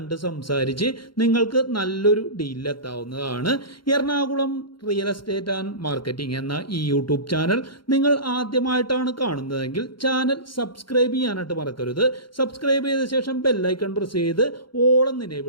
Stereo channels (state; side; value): late; right; 0.73 ms